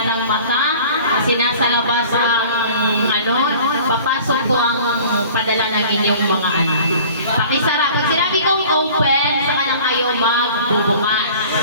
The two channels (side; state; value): both; inverted; correlation -0.46